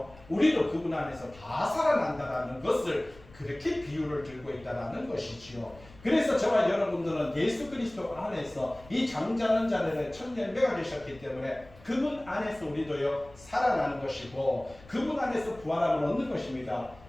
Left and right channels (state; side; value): noise; left; rumble, 23 dB below the sound